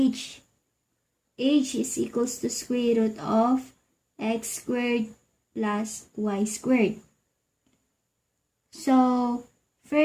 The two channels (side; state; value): both; identical; correlation 1.00